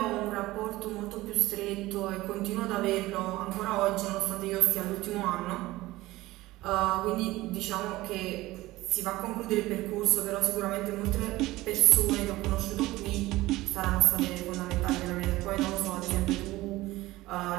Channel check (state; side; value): quieter; left; 18.2 dB